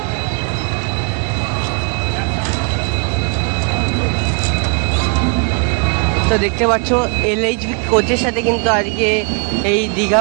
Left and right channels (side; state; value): left; quieter; 37.0 dB